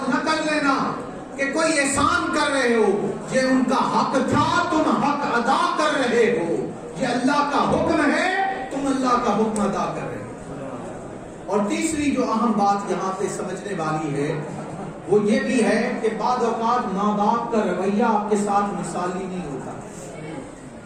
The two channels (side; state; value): both; identical; correlation 1.00